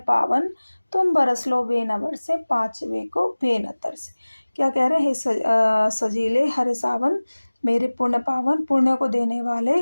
तुम बरस लो बेन बरसे, पाँचवे को बेन तरसे। क्या कह रहे हैं, हे सजीले हरे सावन, मेरे पुण्य पावन, पुण्य को देने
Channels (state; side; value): inverted; both; correlation -1.00